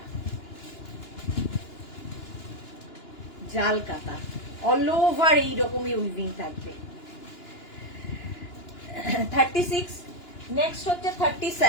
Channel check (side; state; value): right; late; 2.9 ms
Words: জাল কাতা, অল ওভার এইরকমই উইভিং থাকবে। 36, নেক্সট হচ্ছে